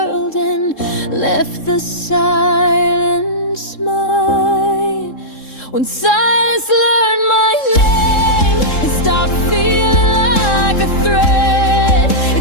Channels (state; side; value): late; right; 3.7 ms